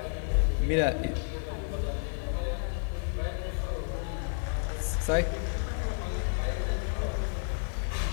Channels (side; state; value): right; silent; digital silence